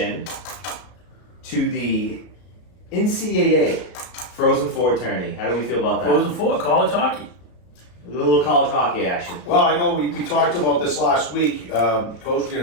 to the NCAA Frozen Four tourney. How do we feel about that? Frozen Four, college hockey. A little college hockey action. Well, I know we talked about this last week. Coach, we'll get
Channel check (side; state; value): right; late; 34 ms